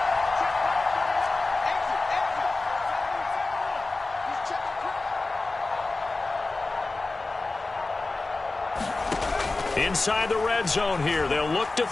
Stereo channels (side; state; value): right; quieter; 3.4 dB